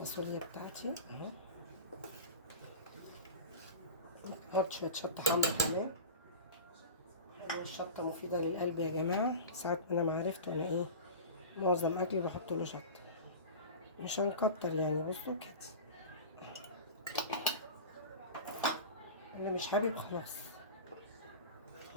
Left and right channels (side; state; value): both; inverted; correlation -0.31